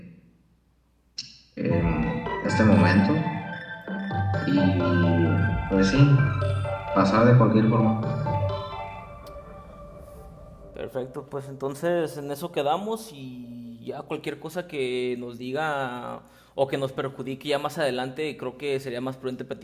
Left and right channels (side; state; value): both; identical; correlation 1.00